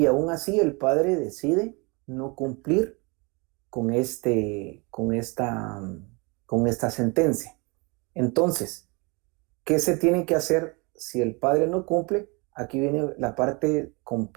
aún así el padre decide no cumplir con esta sentencia. Entonces, ¿qué se tiene que hacer si el padre no cumple? Aquí viene la parte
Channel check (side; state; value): left; quieter; 29.6 dB